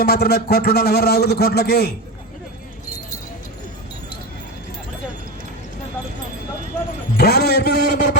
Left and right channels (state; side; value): normal; both; correlation 0.20